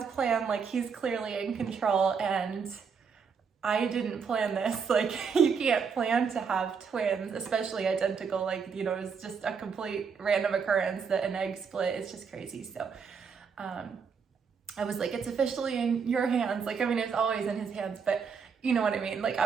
plan. Like, he's clearly in control, and I didn't plan this. Like, you can't plan to have twins, especially identical. Like, it's just a complete random occurrence that an egg split. It's just crazy. So, I was like, it's officially in your hands. Like, I mean, it's always in his hands, but you know what I mean? Like,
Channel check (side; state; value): left; quieter; 6.0 dB